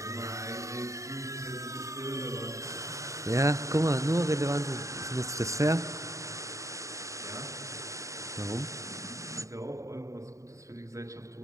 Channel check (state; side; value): late; left; 0.15 ms